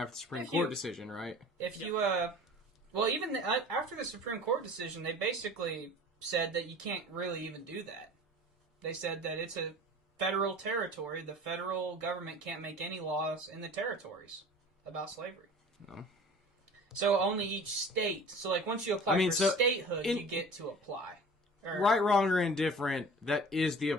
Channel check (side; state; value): both; normal; correlation 0.42